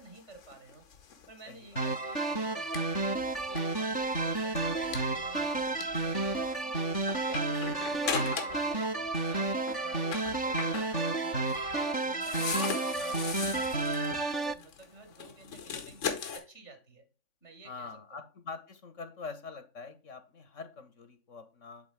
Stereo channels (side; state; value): right; late; 3.7 ms